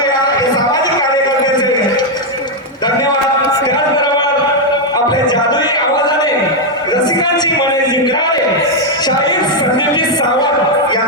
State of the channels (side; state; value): both; normal; correlation 0.01